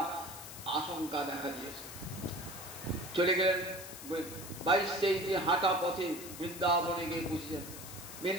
আশঙ্কা দেখা দিয়েছে। চলে গেলেন 22-23 হাঁটা পথে বৃন্দাবনে গিয়ে পৌঁছেছেন।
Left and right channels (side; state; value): left; noise; hiss, 12 dB below the sound